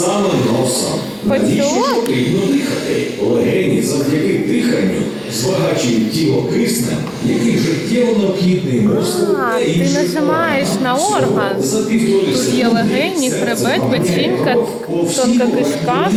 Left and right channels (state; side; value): identical; both; correlation 1.00